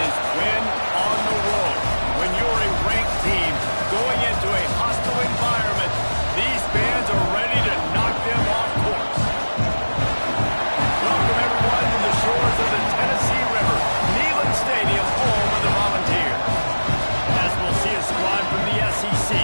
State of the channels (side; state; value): both; inverted; correlation -1.00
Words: win on the road. When you're a ranked team going into a hostile environment, these fans are ready to knock them off course. Welcome everyone to the shores of the Tennessee River, Neyland Stadium, home of the Volunteers. As we'll see a squad from the SEC,